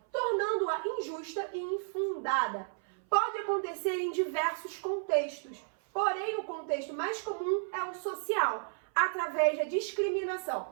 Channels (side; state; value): left; silent; 56 dB below the other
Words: tornando-a injusta e infundada. Pode acontecer em diversos contextos, porém o contexto mais comum é o social, através da